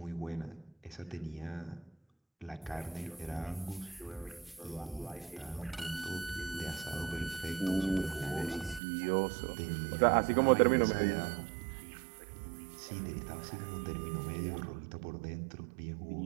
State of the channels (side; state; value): left; drops out; at 8.8 s